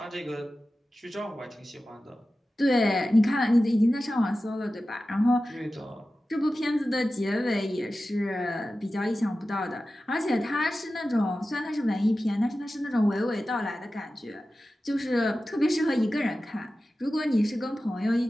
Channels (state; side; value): normal; both; correlation 0.94